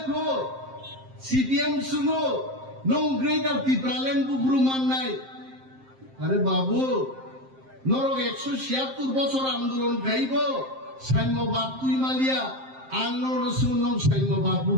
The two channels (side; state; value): left; late; 7.6 ms